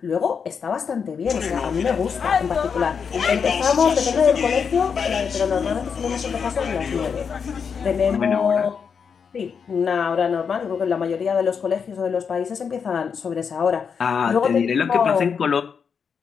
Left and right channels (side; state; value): right; quieter; 6.4 dB